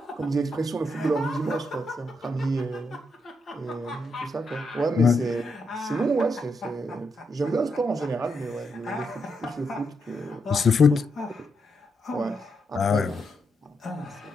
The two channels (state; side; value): normal; both; correlation 0.81